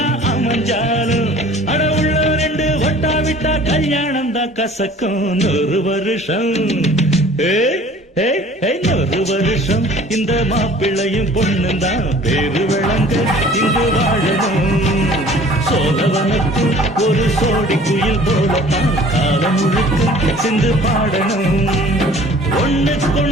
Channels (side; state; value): both; normal; correlation 0.49